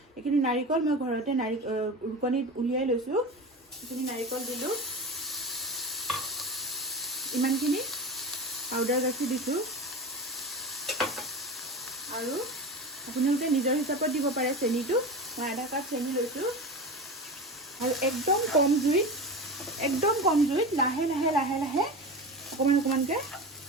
এইখিনি নাৰিকল মই ঘৰতে ৰুকনিত উলিয়াই লৈছোঁ। এইখিনি নাৰিকল দিলোঁ, ইমানখিনি পাউডাৰ গাখীৰ দিছোঁ। আৰু আপোনালোকে নিজৰ হিচাপত দিব পাৰে চেনিটো, মই আধা কাপ চেনি লৈছোঁ। আৰু একদম কম জুইত লাহে লাহে অকণমান অকণমানকৈ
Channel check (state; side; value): normal; both; correlation 0.28